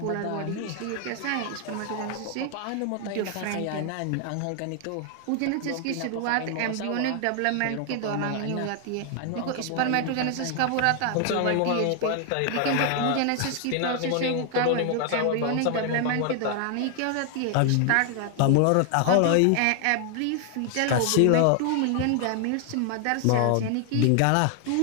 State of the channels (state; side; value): different; both; correlation 0.00